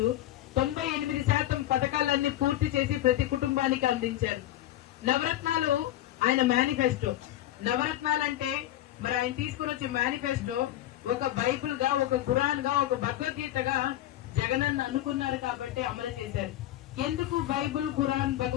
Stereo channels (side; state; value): right; quieter; 13.9 dB